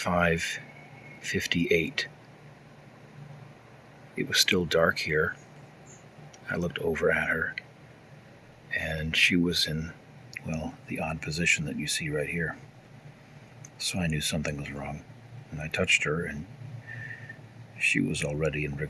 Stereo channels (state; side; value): identical; both; correlation 1.00